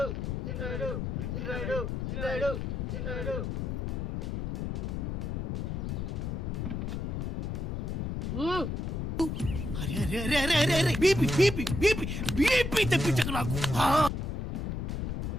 చిన్నరాయుడు చిన్నరాయుడు చిన్నరాయుడు చిన్నరాయుడు అరే అరే అరే అరే అరే అరే బీపీ బీపీ బీపీ బీపీ తెప్పించకు నాకు.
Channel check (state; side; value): noise; left; rumble, 2 dB below the sound